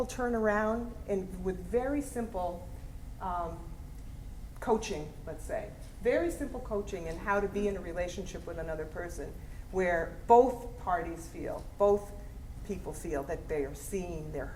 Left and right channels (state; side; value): identical; both; correlation 1.00